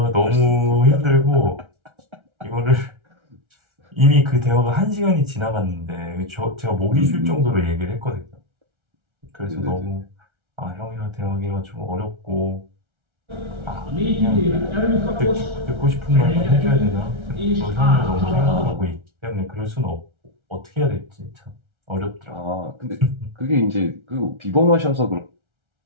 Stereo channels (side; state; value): left; late; 1.3 ms